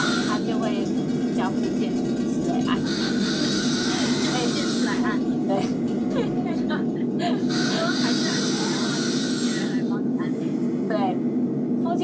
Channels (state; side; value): identical; both; correlation 1.00